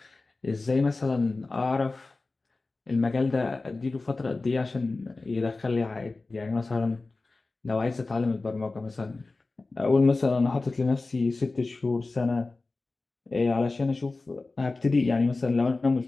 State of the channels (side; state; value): right; quieter; 3.5 dB